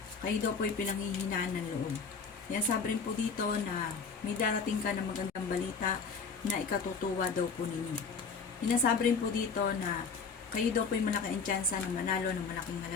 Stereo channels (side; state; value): right; quieter; 5.3 dB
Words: Kayo daw po ay pinanghihinaan ng loob. Kaya sabi rin po dito na may darating ka ng magandang balita na ikatutuwa daw po ninyo. Sinasabi rin po dito na kayo daw po ay malaking tsansa na manalo ng malaking